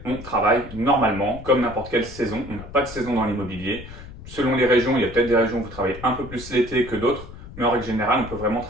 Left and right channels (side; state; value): left; noise; rumble, 14 dB below the sound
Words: on travaille normalement, comme n'importe quelle saison. On n'a pas de saison dans l'immobilier. Selon les régions, il y a peut-être des régions où vous travaillez un peu plus l'été que d'autres, mais en règle générale, on peut vraiment